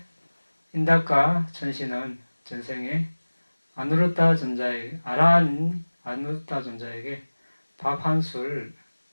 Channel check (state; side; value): inverted; both; correlation -1.00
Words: 인닥과 천신은 전생에 아누르타 존자에게 아누르타 존자에게 밥 한 술